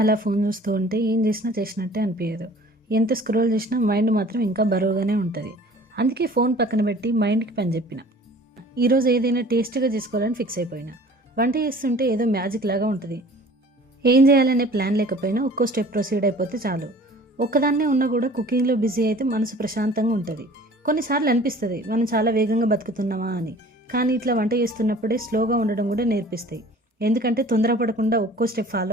ఫోన్ చూస్తూ ఉంటే ఏం చేసినా చేసినట్టే అనిపించదు. ఎంత స్క్రోల్ చేసినా మైండ్ మాత్రం ఇంకా బరువుగానే ఉంటుంది. అందుకే ఫోన్ పక్కన పెట్టి మైండ్కి పని చెప్పిన. ఈరోజు ఏదైనా టేస్టీగా చేసుకోవాలని ఫిక్స్ అయిపోయినా. వంట చేస్తుంటే ఏదో మ్యాజిక్ లాగా ఉంటుంది. ఏం చేయాలనే ప్లాన్ లేకపోయినా ఒక్కో స్టెప్ ప్రొసీడ్ అయిపోతే చాలు. ఒక్కదాన్నే ఉన్నా కూడా కుకింగ్లో బిజీ అయితే మనసు ప్రశాంతంగా ఉంటుంది. కొన్నిసార్లు అనిపిస్తుంది మనం చాలా వేగంగా బతుకుతున్నామా అని. కానీ ఇట్లా వంట చేస్తున్నప్పుడే స్లోగా ఉండడం కూడా నేర్పిస్తాయి. ఎందుకంటే తొందరపడకుండా ఒక్కో స్టెప్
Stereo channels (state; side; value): normal; both; correlation 0.48